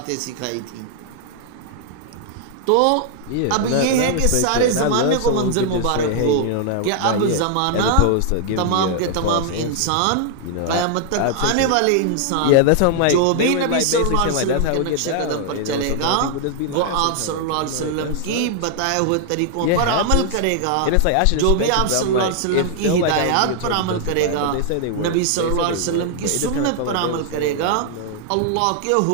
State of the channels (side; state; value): both; different; correlation 0.00